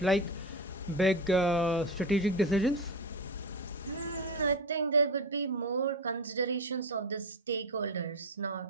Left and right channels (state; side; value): normal; both; correlation 0.20